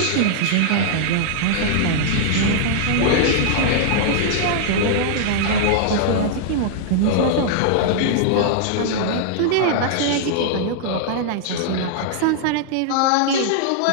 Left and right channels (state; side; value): different; both; correlation -0.01